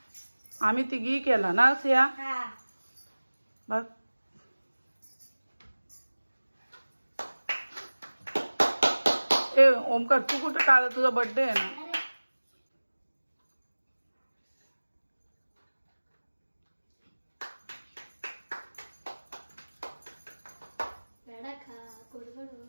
आम्ही तिघी केला ना सिया. बघ ए ओमकार तू कुठे काल तुझा बर्थडे आहे ना.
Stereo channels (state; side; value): inverted; both; correlation -1.00